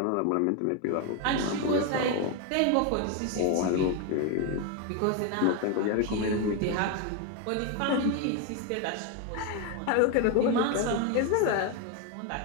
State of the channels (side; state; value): both; different; correlation 0.02